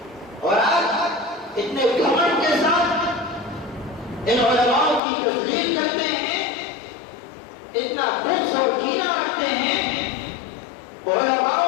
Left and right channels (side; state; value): right; drops out; at 5.0 s